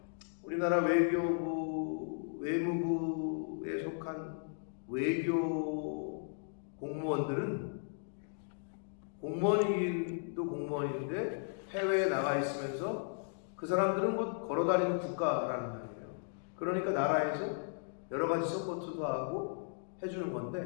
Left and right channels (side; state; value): right; silent; digital silence